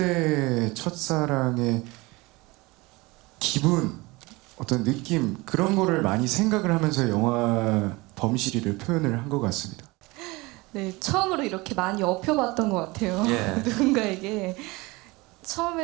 첫사랑의 기분, 어떤 느낌, 그런 거를 많이 생각을 하면서 영화 범실이를 표현을 한 것 같습니다. 네, 처음으로 이렇게 많이 업혀봤던 것 같아요. 예. 누군가에게.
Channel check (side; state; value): left; quieter; 23.2 dB